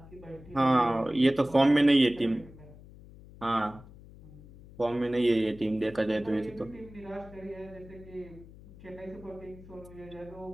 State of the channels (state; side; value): noise; left; hum, 20 dB below the sound